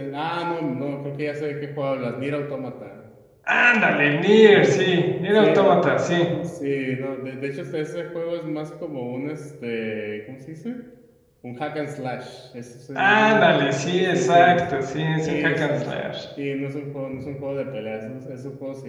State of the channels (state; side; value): identical; both; correlation 1.00